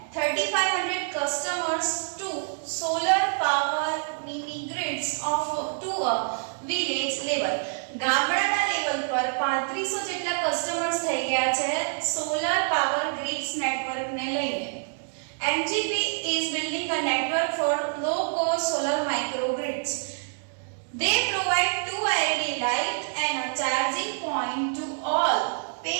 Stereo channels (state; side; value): silent; left; digital silence